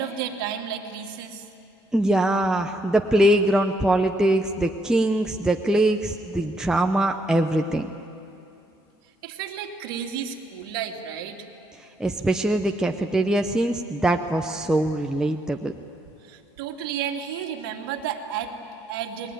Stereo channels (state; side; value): normal; both; correlation 0.75